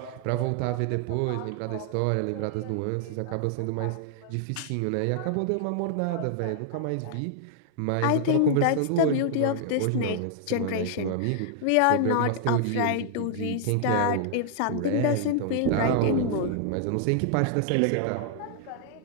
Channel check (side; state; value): both; different; correlation 0.00